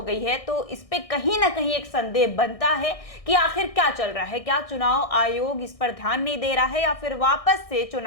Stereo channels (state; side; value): late; right; 1.6 ms